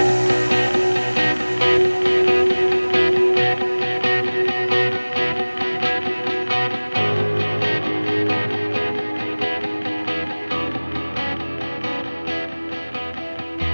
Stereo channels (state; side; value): inverted; both; correlation -1.00